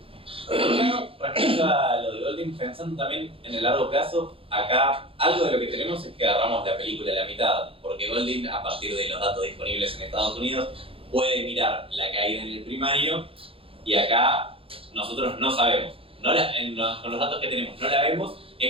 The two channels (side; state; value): left; late; 0.27 ms